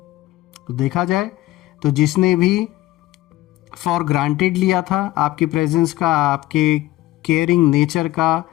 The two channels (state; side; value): quieter; right; 16.7 dB